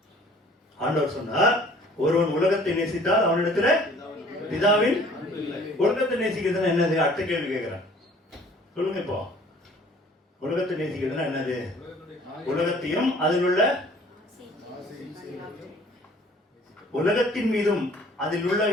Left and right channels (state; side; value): normal; both; correlation 0.53